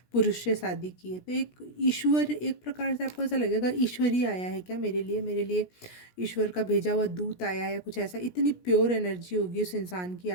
पुरुष से शादी की है, तो एक ईश्वर, एक प्रकार से आपको ऐसा लगेगा ईश्वर ही आया है क्या मेरे लिए ईश्वर का भेजा हुआ दूत आया है या कुछ ऐसा। इतनी प्योर एनर्जी होगी उस इंसान की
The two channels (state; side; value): late; right; 17 ms